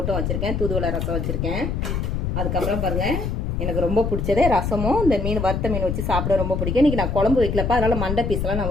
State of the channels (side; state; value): left; noise; rumble, 1 dB below the sound